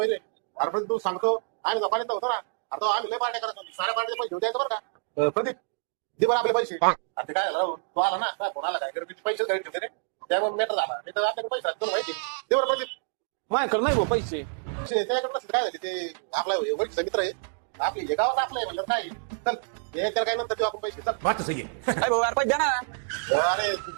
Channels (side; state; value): left; silent; digital silence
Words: रे. अरे पण तू सांगतो आम्ही गप्पा होतो ना. अरे तो आम्ही लय पार्ट्या करत होती साऱ्या पार्ट्याचे पैसे देऊ द्यायचं बरं का. प्रदीप दे बरं आपले पैसे. अरे ते काय झालं राहून तो आला ना काय फोन आला काय गरबीचे पैसे घरी ठेवते रे. त्यामुळे मेटर झाला नाही तर आपल्याकडे पैसा तुला माहिती दे बरं प्रदीप. माझ्याकडे नाही भाऊ पैसे. त्याच्याकडे नसेल काय झाले ते आपला वडीचा मित्र आहे आपली हे गावात आपलं आहे म्हणलं काय चल हे तर काय नंतर देऊ आपण पैसे चल. बात तो सही है. अरे भाऊ यार पैसे द्या ना. अरे